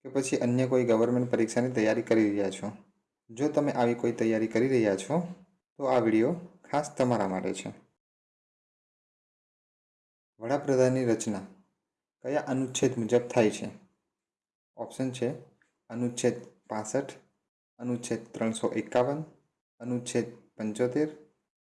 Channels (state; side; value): identical; both; correlation 1.00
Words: કે પછી અન્ય કોઈ ગવર્મેન્ટ પરીક્ષાની તૈયારી કરી રહ્યા છો? જો તમે આવી કોઈ તૈયારી કરી રહ્યા છો તો આ વિડીયો ખાસ તમારા માટે છે. વડાપ્રધાનની રચના કયા અનુચ્છેદ મુજબ થાય છે? ઓપ્શન છે અનુચ્છેદ 65, અનુચ્છેદ 351, અનુચ્છેદ 75,